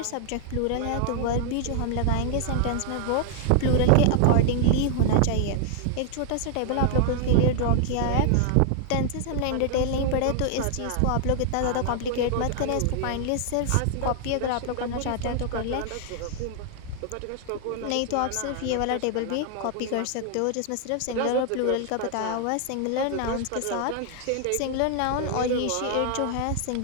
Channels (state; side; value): different; both; correlation 0.00